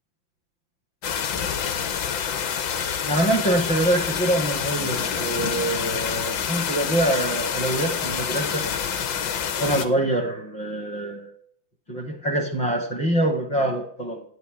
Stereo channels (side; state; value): right; late; 5.8 ms